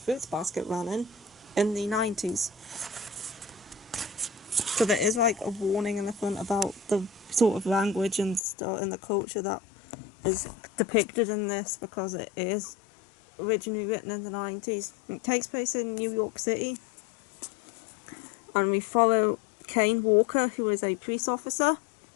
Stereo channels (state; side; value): drops out; right; at 8.4 s